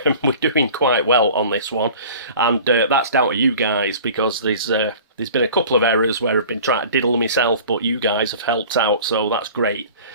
we're doing quite well on this one, and that's down to you guys, because there's been a couple of errors where I've been trying to diddle myself, but you guys have helped out, so that's great.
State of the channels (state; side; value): inverted; both; correlation -0.43